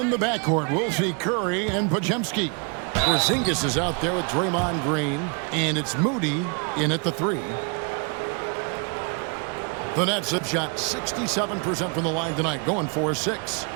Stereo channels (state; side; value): quieter; left; 35.5 dB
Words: the backcourt, we'll see Curry and Podziemski. Porzingis is out there with Draymond Green, and it's Moody in at the 3. The Nets have shot 67% from the line tonight, going 4-6.